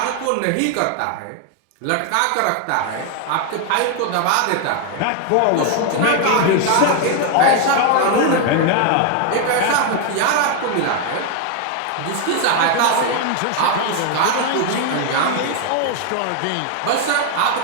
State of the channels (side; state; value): both; different; correlation 0.01